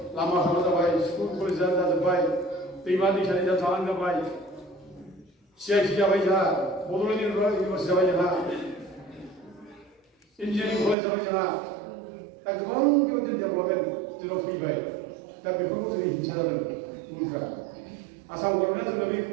lama sama terbaik, sekolah jalan terbaik, pribadi cari jalan terbaik, siapa baik jalan, bodoh ini universitas baik jalan, engineering college baik jalan, tak orang kita tidak boleh tidak baik, tapi perlu jadi jalan murah. Asal orang itu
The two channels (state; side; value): drops out; left; at 11.0 s